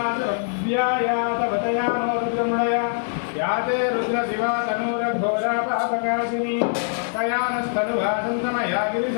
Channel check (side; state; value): right; silent; 57 dB below the other